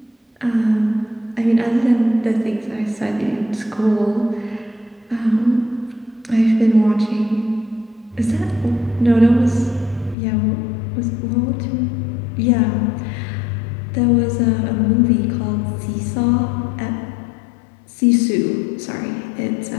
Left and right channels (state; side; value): drops out; right; at 10.2 s